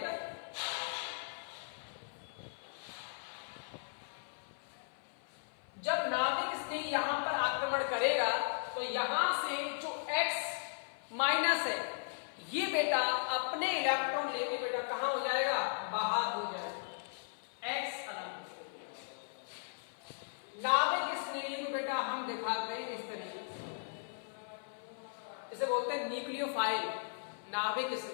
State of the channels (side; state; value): right; silent; 53 dB below the other